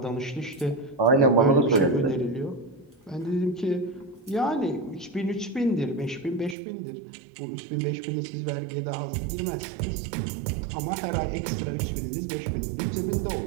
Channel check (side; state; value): left; drops out; at 6.6 s